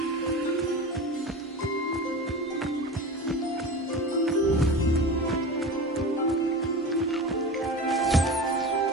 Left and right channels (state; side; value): normal; both; correlation 0.30